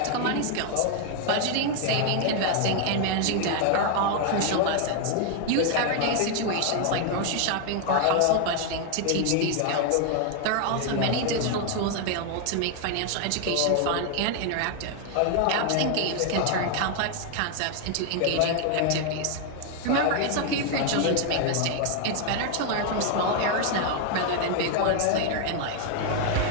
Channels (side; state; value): both; different; correlation 0.00